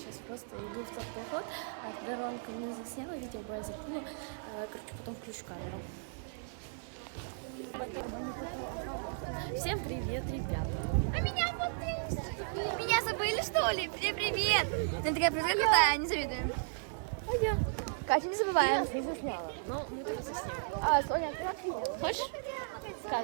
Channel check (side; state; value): left; silent; digital silence